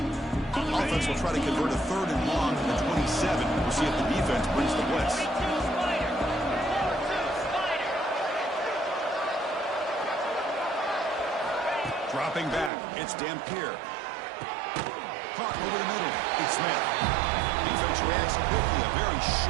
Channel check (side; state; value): left; drops out; at 12.7 s